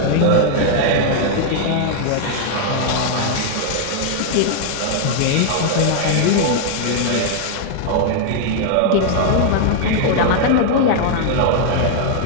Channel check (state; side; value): different; both; correlation 0.00